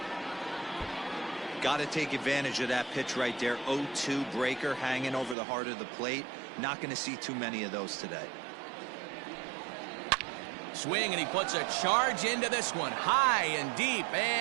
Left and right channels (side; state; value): left; drops out; at 5.4 s